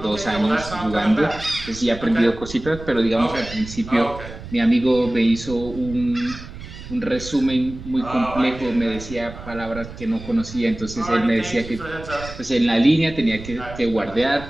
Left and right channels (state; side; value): noise; right; rumble, 13 dB below the sound